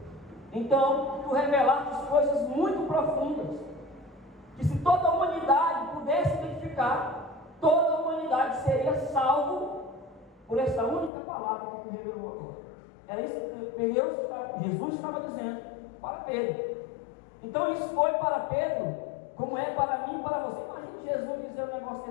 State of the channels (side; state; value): right; drops out; at 11.1 s